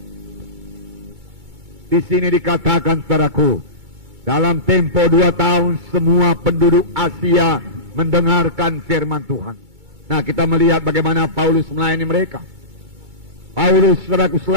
Di sini dikatakan, saudaraku, dalam tempo 2 tahun semua penduduk Asia mendengarkan firman Tuhan. Nah, kita melihat bagaimana Paulus melayani mereka. Paulus, saudaraku,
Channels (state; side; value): late; left; 2.3 ms